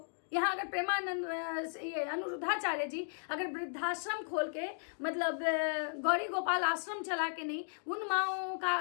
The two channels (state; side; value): silent; right; digital silence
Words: यहाँ अगर प्रेमानंद ये अनुरुद्धाचार्य जी अगर वृद्धाश्रम खोल के मतलब गौरी गोपाल आश्रम चला के नहीं उन माओ